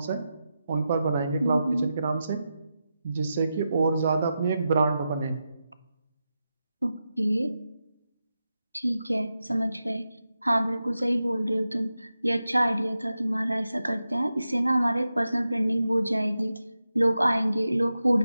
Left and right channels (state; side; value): inverted; both; correlation -0.90